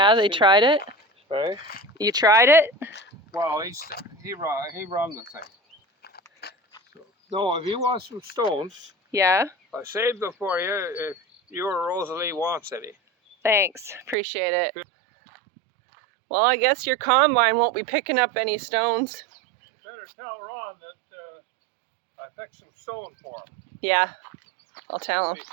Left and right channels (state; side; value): drops out; left; at 14.2 s